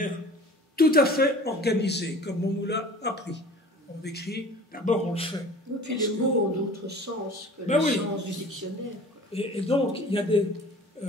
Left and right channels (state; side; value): normal; both; correlation 0.44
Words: tout à fait organisée, comme on nous l'a appris. On écrit, d'abord on le fait. Et puis les mots ont d'autres sens que Ben le oui. sens du dictionnaire. Et donc, il y a des...